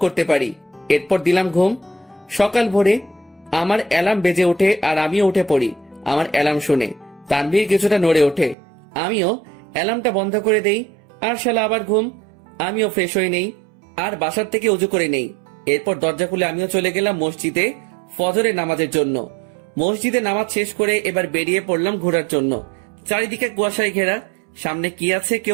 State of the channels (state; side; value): drops out; left; at 8.6 s